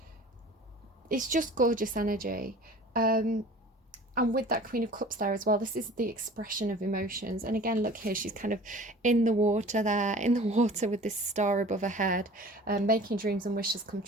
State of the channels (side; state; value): both; normal; correlation 0.44